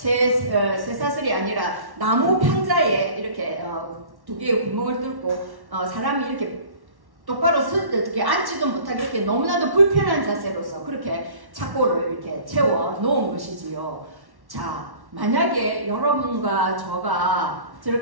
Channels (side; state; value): left; late; 1.1 ms